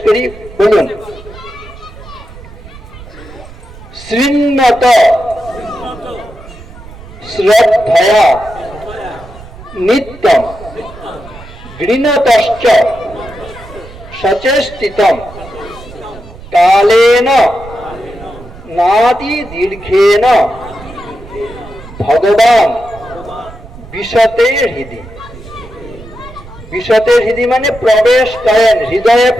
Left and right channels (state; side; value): noise; right; rumble, 17 dB below the sound